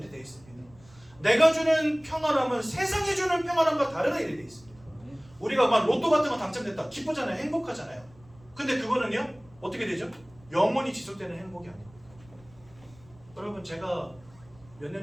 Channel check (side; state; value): right; noise; rumble, 26 dB below the sound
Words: 되어 있습니다. 내가 주는 평안함은 세상이 주는 평안함과 다르다 이렇게 되어 있습니다. 우리가 막 로또 같은 거 당첨됐다 기쁘잖아요. 행복하잖아요. 근데 그거는요 어떻게 되죠? 영원히 지속되는 행복이 아닙니다. 여러분 제가 몇